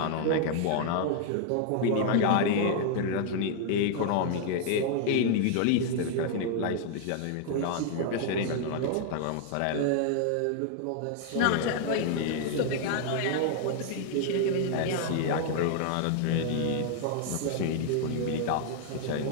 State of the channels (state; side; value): different; both; correlation 0.00